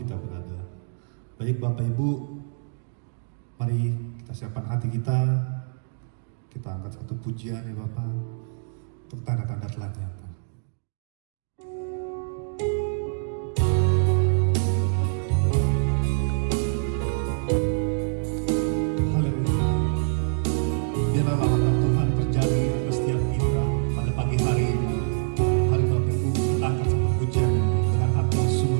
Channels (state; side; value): silent; left; digital silence